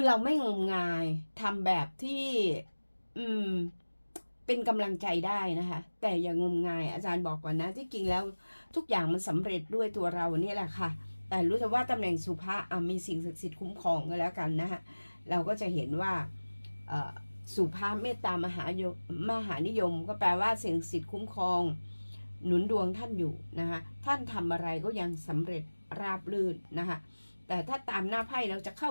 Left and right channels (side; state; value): both; inverted; correlation -1.00